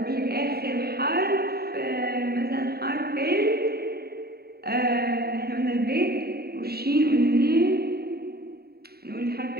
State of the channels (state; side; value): late; left; 0.45 ms